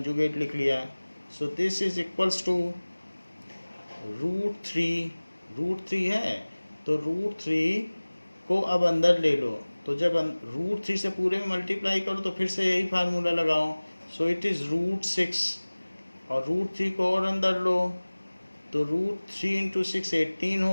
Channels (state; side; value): inverted; both; correlation -1.00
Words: लिख लिया। So this is equals to root 3 है तो रूट 3 को अब अंदर ले लो। तो जब रूट 3 से पूरे में मल्टीप्लाई करो तो फिर से यही फार्मूला लगाओ। सो इट इज़ रूट 6 और रूट 3 को और अंदर लो तो रूट 3 इंटू 6 18